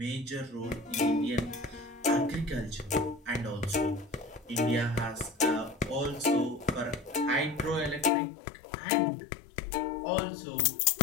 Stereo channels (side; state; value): right; drops out; at 8.1 s